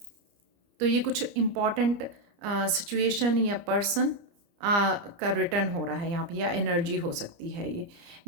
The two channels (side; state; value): left; late; 29 ms